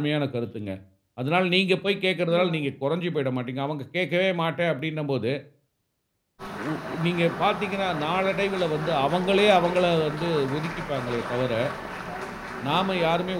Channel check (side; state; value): both; identical; correlation 1.00